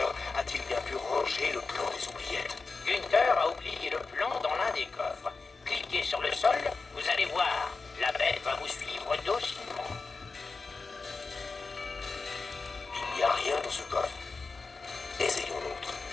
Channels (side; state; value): right; quieter; 4.2 dB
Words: a-t-il bien pu ranger le plan des oubliettes? Gunther